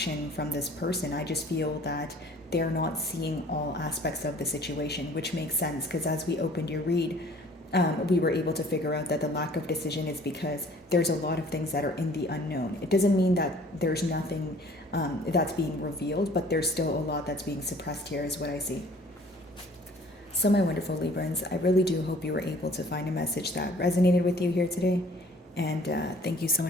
from this person. I just feel that they're not seeing all aspects of the situation, which makes sense because as we opened your read, we were able to figure out that the lack of decision is because there's a lot of things that are in the unknown. It doesn't mean that there's nothing that's being revealed, but there's still a lot that's being suppressed here, is what I see. So, my wonderful Librans, I really do hope you were able to find a message that resonated with you here today. And thank you so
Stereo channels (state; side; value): normal; both; correlation 0.53